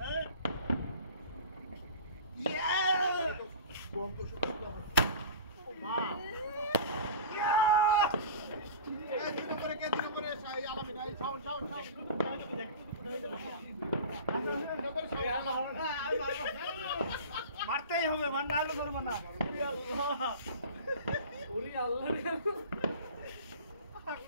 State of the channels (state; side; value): inverted; both; correlation -0.37